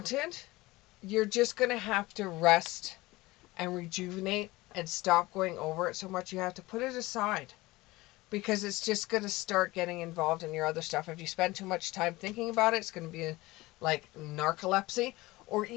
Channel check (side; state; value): right; quieter; 20.1 dB